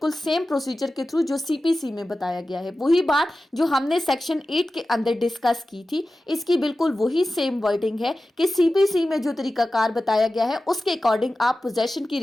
सेम प्रोसीजर के थ्रू जो सीपीसी में बताया गया है। वही बात जो हमने सेक्शन 8 के अंदर डिस्कस की थी, इसकी बिल्कुल वही सेम वर्डिंग है कि सीपीसी में जो तरीकाकार बताया गया है उसके अकॉर्डिंग आप पोजेशन की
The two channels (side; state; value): both; normal; correlation 0.94